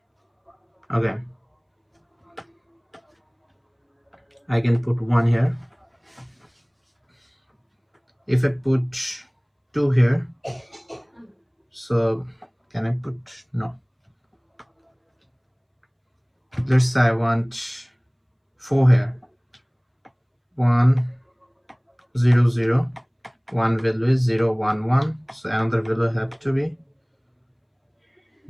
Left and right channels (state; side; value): identical; both; correlation 1.00